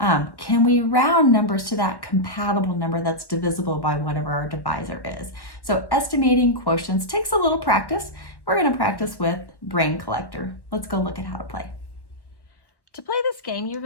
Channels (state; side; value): late; right; 1.1 ms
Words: can we round numbers to that compatible number that's divisible by whatever our divisor is? So estimating quotients takes a little practice. We're going to practice with Brain Collector. Let's go look at how to play. To play this game, you're